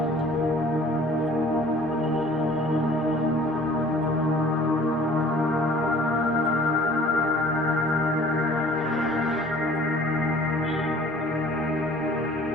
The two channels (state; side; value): normal; both; correlation 0.51